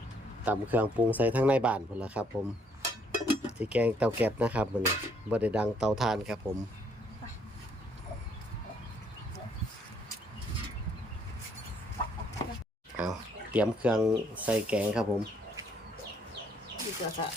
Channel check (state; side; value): normal; both; correlation 0.67